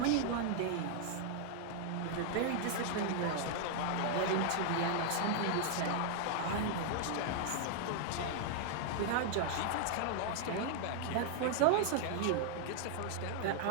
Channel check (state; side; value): different; both; correlation 0.00